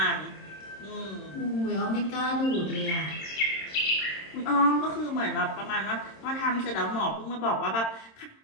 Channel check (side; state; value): right; late; 26 ms